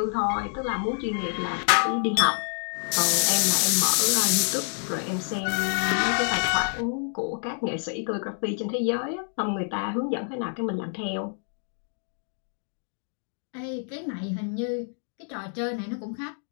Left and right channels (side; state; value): right; silent; 56 dB below the other